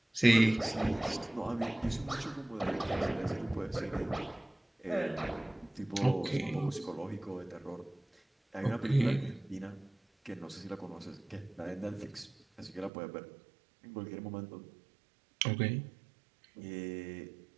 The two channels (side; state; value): left; drops out; at 12.9 s